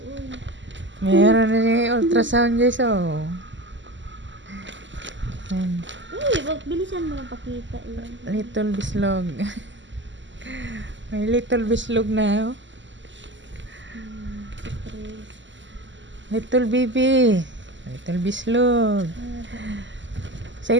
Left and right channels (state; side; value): late; left; 0.54 ms